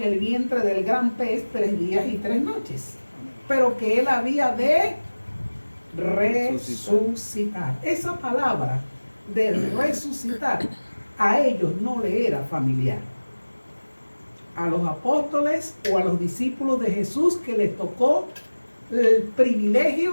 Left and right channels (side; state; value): both; inverted; correlation -1.00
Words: el vientre del gran pez 3 días y 3 noches, pero que él había de resucitar. Esa palabra de resucitar a ellos no le era familiar. A los apóstoles o a los discípulos de Jesús que les tocó el